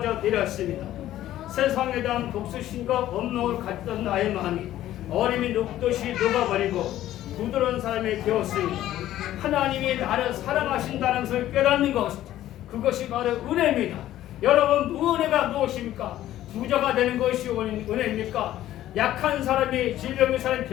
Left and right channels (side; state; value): right; quieter; 13.4 dB